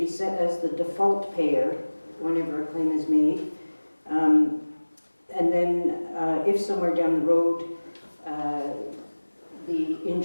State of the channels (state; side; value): inverted; both; correlation -1.00